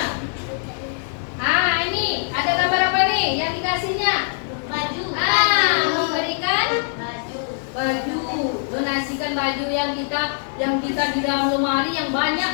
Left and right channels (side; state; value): right; silent; digital silence